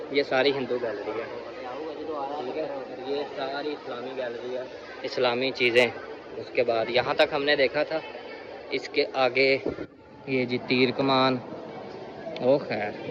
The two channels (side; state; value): both; identical; correlation 1.00